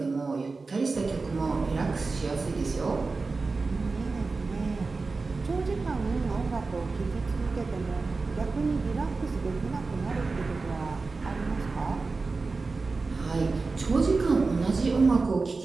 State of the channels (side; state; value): left; quieter; 4.0 dB